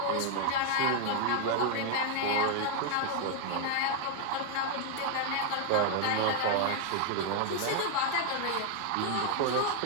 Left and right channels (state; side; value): different; both; correlation 0.00